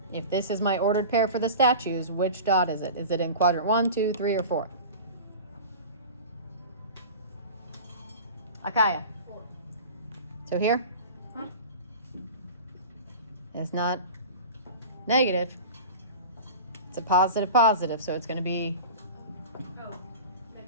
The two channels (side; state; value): both; inverted; correlation -0.35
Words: If this is my ordered pair for the statues, which dot is it? Is it in quadrant 1, 2, 3, or 4? Akaya. 4. So here? It's not negative. It's a positive, so it's going to be Oh,